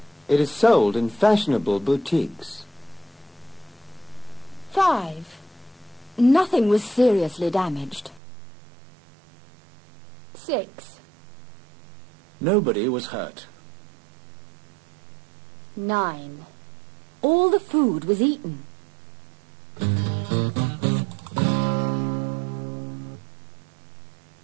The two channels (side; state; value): left; drops out; at 8.2 s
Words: It is sold in fashionable boutiques. 5. Nothing was seriously damaged. 6. Nobody was hurt. 9. All the food was eaten.